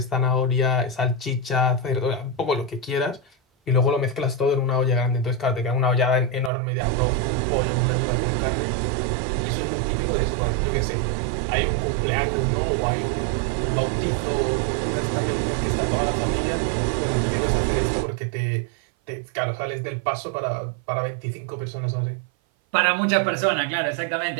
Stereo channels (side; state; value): left; drops out; at 6.5 s